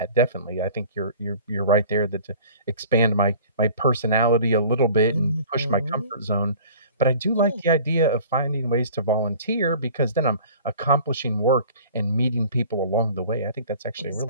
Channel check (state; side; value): inverted; both; correlation -0.46